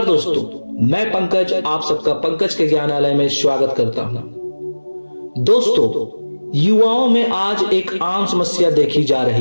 दोस्तों, मैं पंकज आप सबका पंकज के ज्ञानालय में स्वागत करता हूं। दोस्तों, युवाओं में आज एक आम समस्या देखी जा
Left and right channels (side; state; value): both; inverted; correlation -1.00